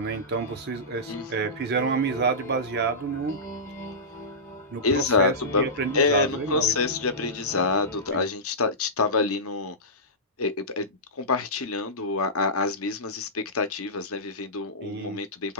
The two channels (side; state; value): both; normal; correlation -0.17